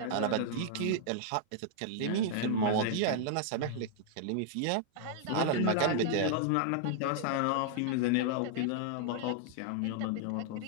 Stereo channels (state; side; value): different; both; correlation -0.01